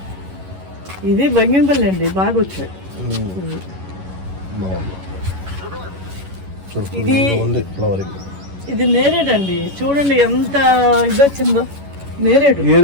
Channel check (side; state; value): left; late; 11 ms